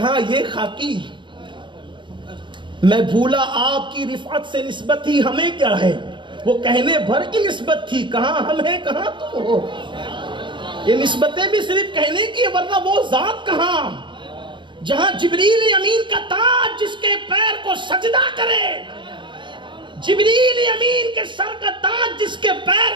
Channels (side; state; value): left; late; 0.23 ms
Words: یہ خاکی. میں بھولا آپ کی رفعت سے نسبت ہی ہمیں کیا ہے، وہ کہنے بھر کی نسبت تھی، کہاں ہم ہیں کہاں تم ہو. یہ نسبتیں بھی صرف کہنے کی، ورنہ وہ ذات کہاں جہاں جبریل امین کا تاج جس کے پیر کو سجدہ کرے، جبریل امین کے سر کا تاج جس کے پیر